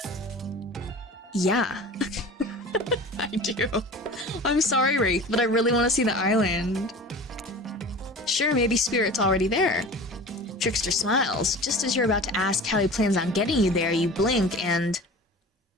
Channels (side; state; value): both; normal; correlation 0.38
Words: Yeah. I do. I'm sorry, Wraith, but I really want to see the island. Sure, maybe Spirit's already there. Trickster smiles. Just as you're about to ask how he plans on getting you there, you blink and...